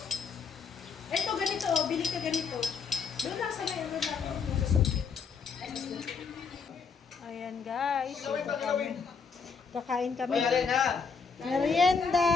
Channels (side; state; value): right; quieter; 5.5 dB